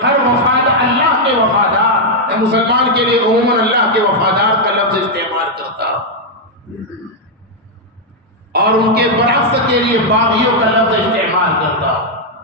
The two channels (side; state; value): both; normal; correlation -0.02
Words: ہر وفادار اللہ کے وفادار، مسلمان کے لیے عموماً اللہ کے وفادار کا لفظ استعمال کرتا، اور ان کے برعکس کے لیے باغیوں کا لفظ استعمال کرتا۔